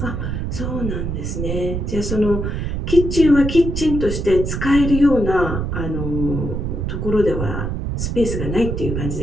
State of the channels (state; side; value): noise; right; rumble, 3 dB below the sound